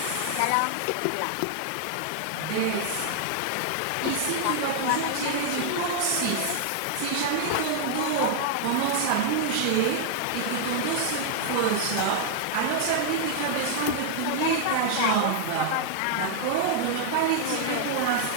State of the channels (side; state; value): both; different; correlation -0.01